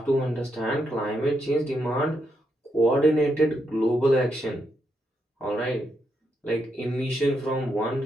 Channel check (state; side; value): normal; both; correlation 0.81